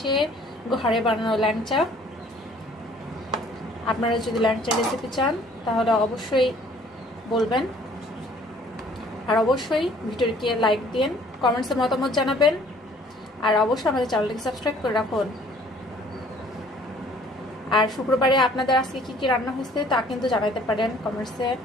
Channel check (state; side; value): normal; both; correlation 0.56